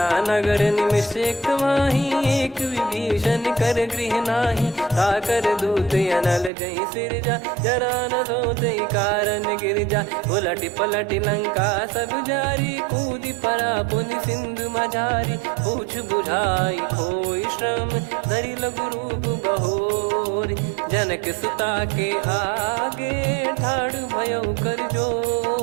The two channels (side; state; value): left; drops out; at 6.5 s